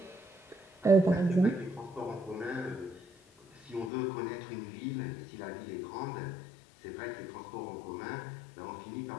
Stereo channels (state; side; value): drops out; right; at 3.9 s